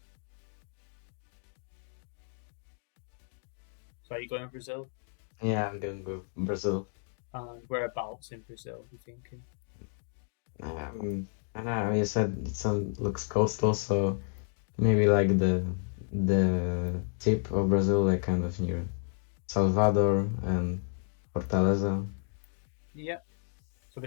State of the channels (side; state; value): right; silent; digital silence